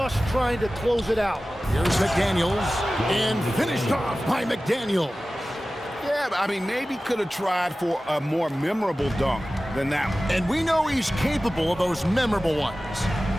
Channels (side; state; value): both; normal; correlation 0.96